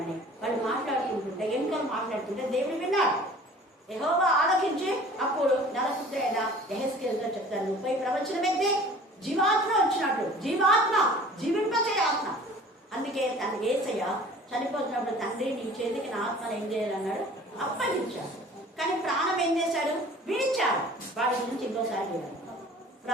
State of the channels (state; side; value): normal; both; correlation 0.46